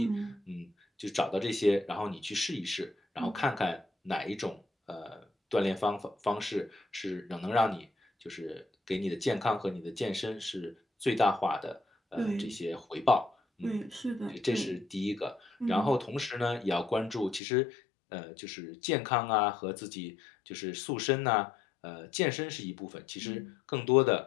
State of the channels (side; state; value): right; drops out; at 17.4 s